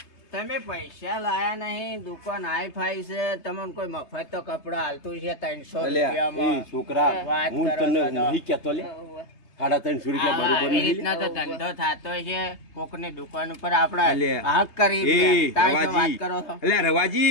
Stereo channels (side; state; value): right; late; 3.3 ms